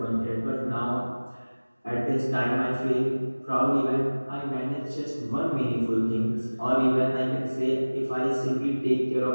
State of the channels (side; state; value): both; inverted; correlation -1.00